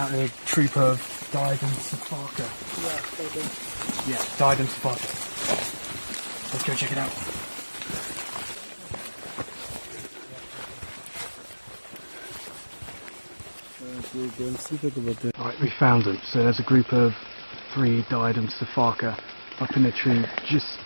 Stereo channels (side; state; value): both; inverted; correlation -1.00